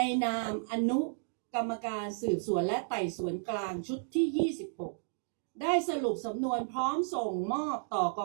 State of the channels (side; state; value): left; silent; digital silence